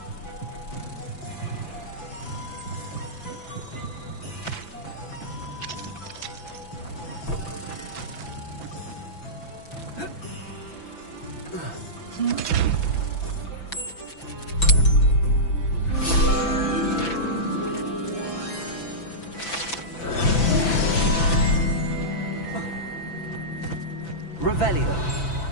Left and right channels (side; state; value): right; late; 6.0 ms